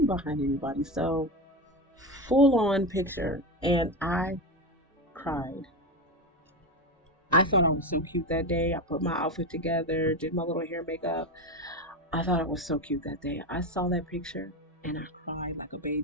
behind anybody. So full on picture, and I cried. I thought I was so cute that day. I put my outfit together, did my little hair makeup. I thought I was so cute that day. I saw that picture and I cried like a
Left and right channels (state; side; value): normal; both; correlation 0.17